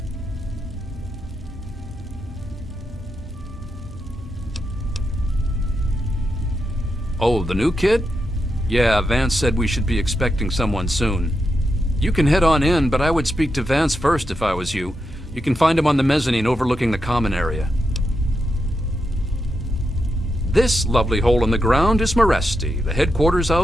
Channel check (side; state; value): both; normal; correlation 0.85